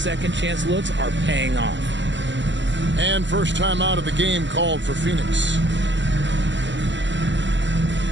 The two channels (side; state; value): left; late; 0.53 ms